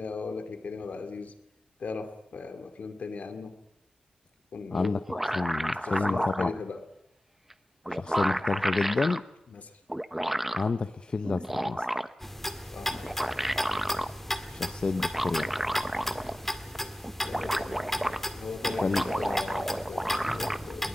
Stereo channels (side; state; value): both; normal; correlation 0.95